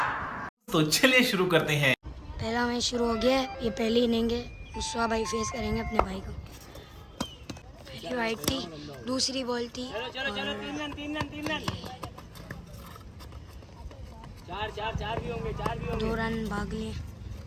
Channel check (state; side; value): identical; both; correlation 1.00